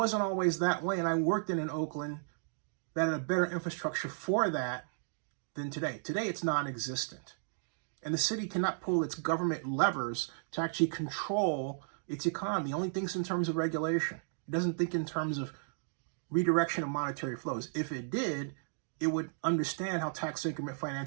always that way, and I worked in Oakland that had a better infrastructure for that than today. Today, it's non-existent. And the city cannot pull its government levers to actually control its economy. It only thinks in terms of regulation. It doesn't think in terms of redirection of monetary flows. If it did, it would understand how tax increment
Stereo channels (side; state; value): left; silent; digital silence